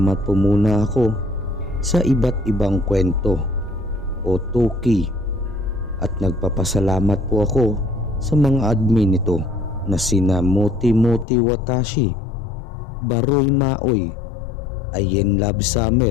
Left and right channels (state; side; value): drops out; right; at 11.2 s